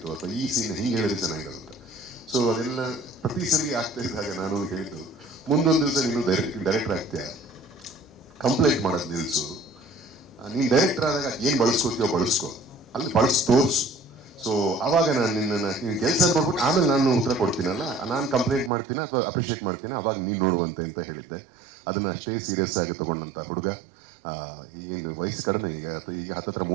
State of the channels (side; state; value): left; drops out; at 18.7 s